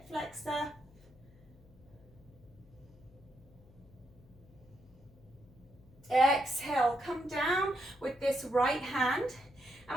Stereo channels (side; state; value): left; noise; hum, 24 dB below the sound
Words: flexor. Exhale, come down with this right hand.